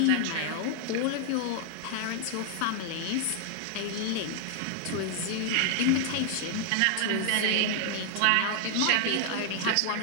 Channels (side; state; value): both; different; correlation 0.00